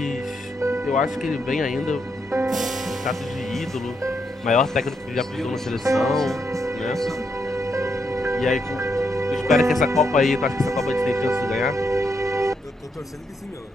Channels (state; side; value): normal; both; correlation 0.79